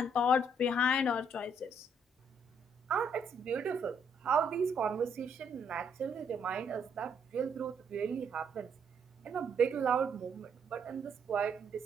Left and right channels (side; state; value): both; normal; correlation 0.70